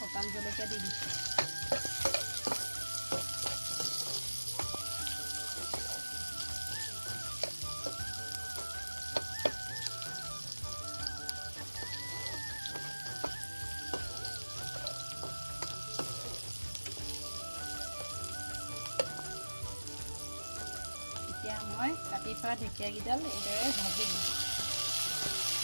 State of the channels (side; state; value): both; inverted; correlation -1.00